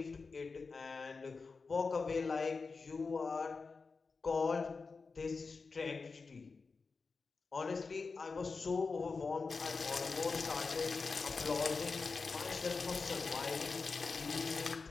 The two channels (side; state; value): right; quieter; 4.5 dB